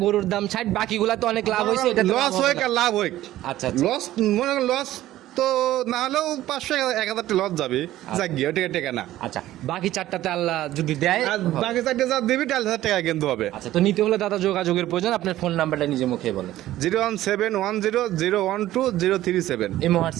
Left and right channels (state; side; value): quieter; left; 14.6 dB